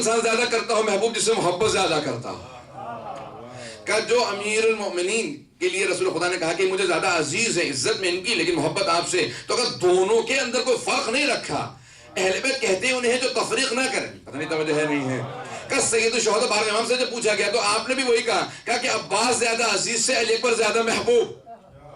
زیادہ کرتا ہو، محبوب جس سے محبت زیادہ کرتا ہو. کہ جو امیر المؤمنین کے لیے رسول خدا نے کہا کہ مجھے زیادہ عزیز ہے عزت میں ان کی، لیکن محبت آپ سے. تو اگر دونوں کے اندر کوئی فرق نہیں رکھا، اہل بیت کہتے ہیں انہیں جو تفریق نہ کریں. پتہ نہیں توجہ ہے نہیں ہے. کہ سید الشہداء 12ویں امام سے جب پوچھا گیا تو آپ نے بھی وہی کہا کہ عباس زیادہ عزیز سے، علی اکبر زیادہ محبوب.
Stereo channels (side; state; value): both; identical; correlation 1.00